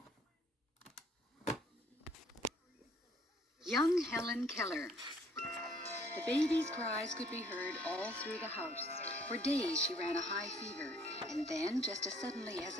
Young Helen Keller. The baby's cries could be heard all through the house. For days she ran a high fever, and then, just as suddenly as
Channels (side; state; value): both; normal; correlation 0.61